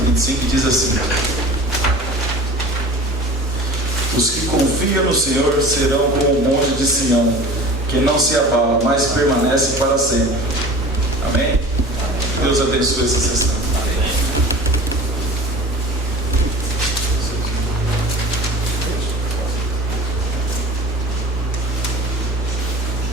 e diz assim: os que confiam no Senhor serão como o monte de Sião, que não se abala, mas permanece para sempre. Amém? Deus abençoe essa sessão.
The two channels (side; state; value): both; normal; correlation 0.39